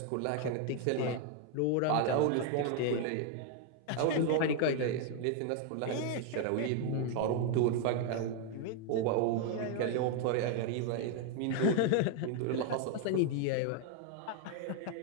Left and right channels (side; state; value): both; different; correlation 0.00